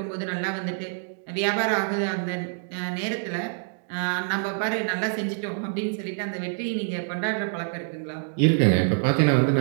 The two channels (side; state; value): left; silent; digital silence